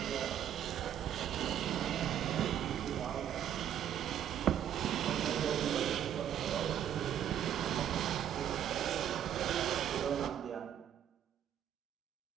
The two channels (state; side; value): quieter; left; 10.1 dB